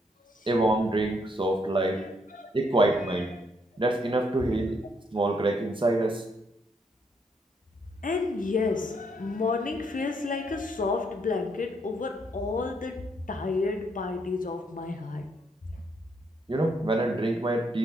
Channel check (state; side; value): normal; both; correlation 0.73